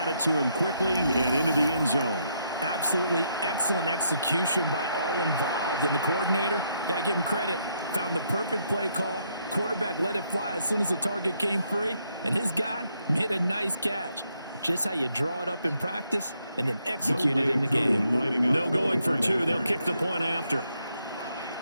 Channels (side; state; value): both; inverted; correlation -0.75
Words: it to him quickly and into the end zone. Absolutely excellent execution by all involved. And the coordinator, got to give him credit, found the perfect play call. Quarterback let it fly as soon as the target came free. And his guy made a nice catch. Just how you draw it up in practice and then execute it in the game. No going for 2. They'll kick the point after.